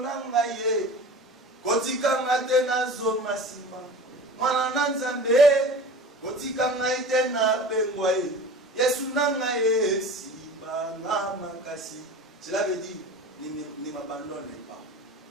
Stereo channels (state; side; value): normal; both; correlation 0.37